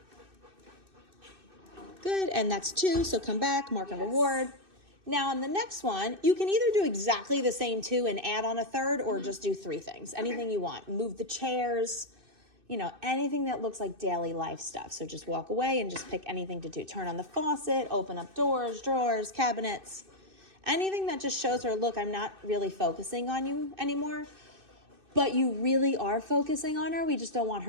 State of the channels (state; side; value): late; left; 2.6 ms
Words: Good, and that's 2, so come back, mark and reward. Now on the next one, you can either do exactly the same 2 and add on a third, or just do 3 things, anything you want. Move the chairs, you know, anything that looks like daily life stuff. So just walk away and just pick anything to do. Turn on the faucet, open up doors, drawers, cabinets, anything that just shows her, look, I'm not really focusing on you anymore. But you really are focusing on her. We just don't want